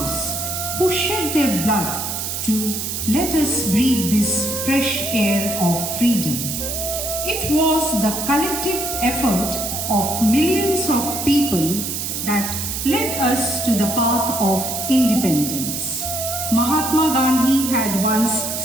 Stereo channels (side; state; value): right; noise; hiss, 4 dB below the sound